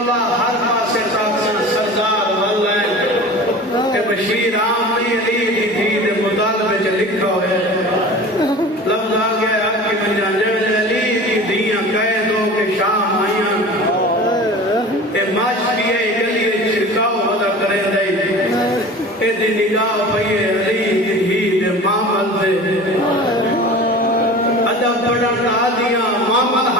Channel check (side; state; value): both; normal; correlation 0.37